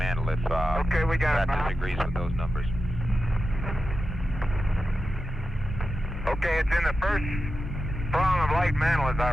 if okay, we got Brad disagrees with those numbers. Okay, it's in the first prong of light mantle, as I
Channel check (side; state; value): both; normal; correlation 0.91